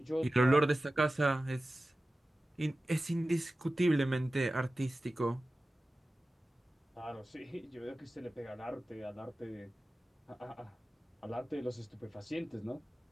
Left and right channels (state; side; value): normal; both; correlation 0.95